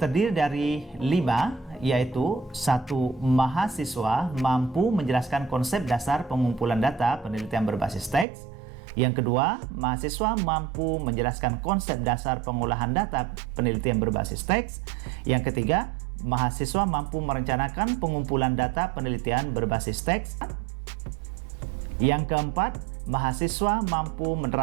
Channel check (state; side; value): drops out; left; at 8.2 s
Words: dari 5, yaitu 1. Mahasiswa mampu menjelaskan konsep dasar pengumpulan data penelitian berbasis teks. Yang kedua, mahasiswa mampu menjelaskan konsep dasar pengolahan data penelitian berbasis teks. Yang ketiga, mahasiswa mampu merencanakan pengumpulan data penelitian berbasis teks. Yang keempat, mahasiswa mampu